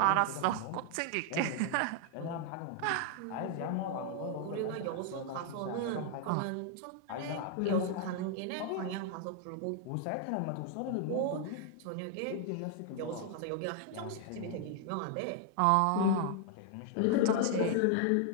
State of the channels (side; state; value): both; different; correlation 0.00